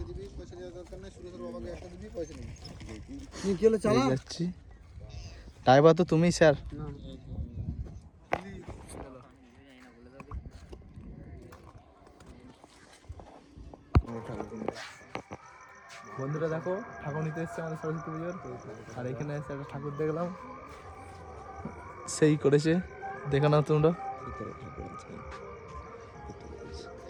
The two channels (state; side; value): identical; both; correlation 1.00